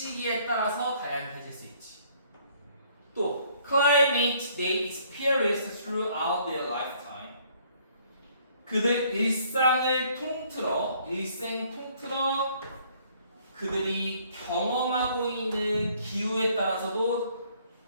따라서 다양해질 수 있지. 또 climate they experience throughout their lifetime. 그들 일생 통틀어 그들이 경험하고 있는 기후에 따라서도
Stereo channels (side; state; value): both; inverted; correlation -0.62